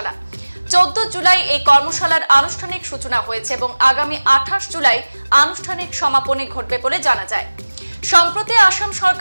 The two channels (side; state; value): both; inverted; correlation -1.00